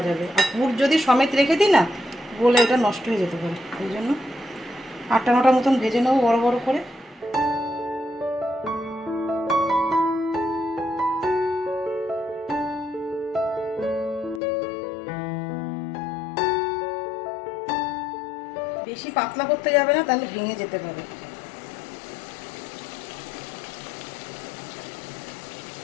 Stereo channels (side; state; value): right; drops out; at 14.4 s